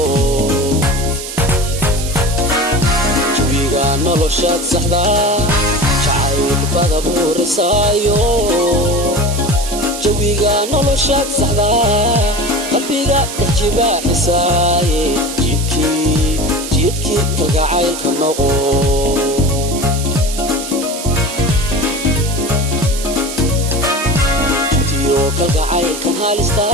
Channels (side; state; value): right; noise; hiss, 8 dB below the sound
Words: jawiga noloshaad saxda jacaylbada buurisaayo jawiga noloshaad saxda qalbiga dajibaaxisaaye jidkii kalgacaylka noqo kalgacaylkan halista